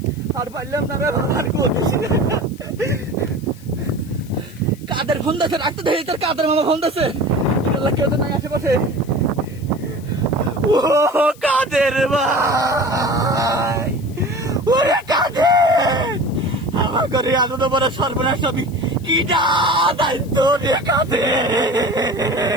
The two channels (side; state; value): left; noise; hiss, 24 dB below the sound